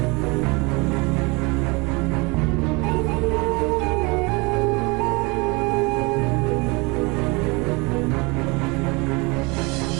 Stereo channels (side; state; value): left; quieter; 27.4 dB